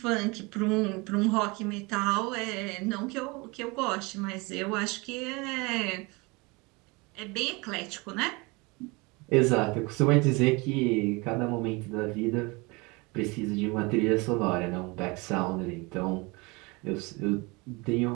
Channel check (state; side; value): quieter; left; 26.5 dB